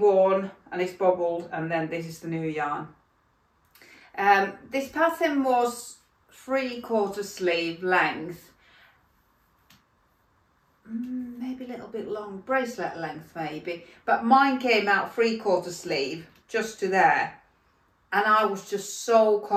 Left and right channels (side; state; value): both; identical; correlation 1.00